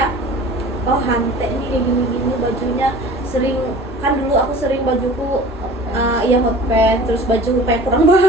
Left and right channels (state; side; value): normal; both; correlation 0.42